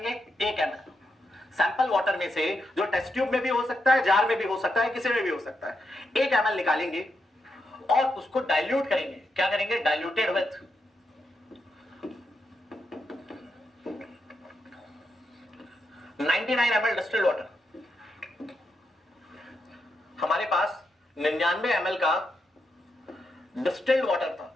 1 ml। सैंपल वाटर में से, जो टेस्ट ट्यूब में भी हो सकता है, जार में भी हो सकता है, किसी में भी हो सकता है, 1 ml निकालेंगे और उसको डाइल्यूट करेंगे। क्या करेंगे? Diluted with 99 ml distilled water. हमारे पास 99 ml का डिस्टिल्ड वाटर था।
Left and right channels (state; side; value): normal; both; correlation 0.83